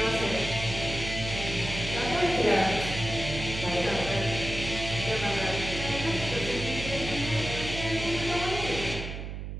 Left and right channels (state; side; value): noise; right; hum, 7 dB below the sound